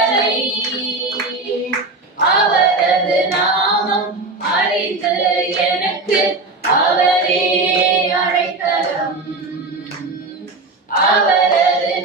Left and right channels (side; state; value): left; quieter; 3.4 dB